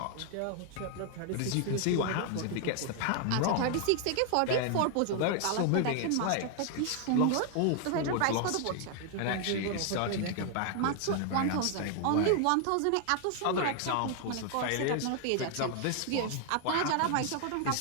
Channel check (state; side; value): different; both; correlation 0.00